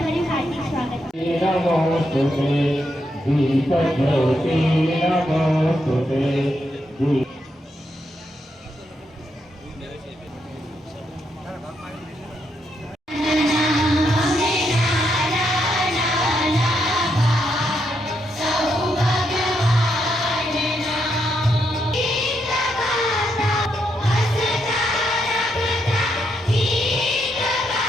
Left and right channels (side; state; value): both; normal; correlation 0.80